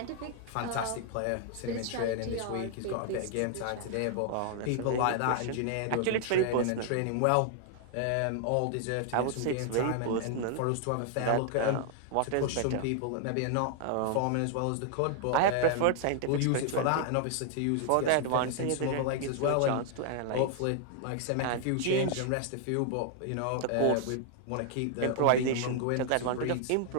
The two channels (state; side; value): different; both; correlation 0.00